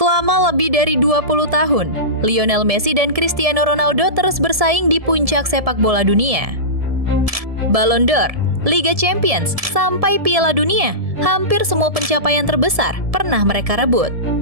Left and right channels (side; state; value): left; late; 1.7 ms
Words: lebih dari 20 tahun, Lionel Messi dan Cristiano Ronaldo terus bersaing di puncak sepak bola dunia. Ballon d'Or, Liga Champions, sampai Piala Dunia, hampir semua pencapaian terbesar pernah mereka rebut.